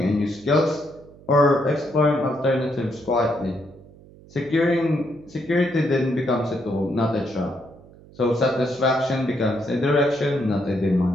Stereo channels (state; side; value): noise; right; hum, 23 dB below the sound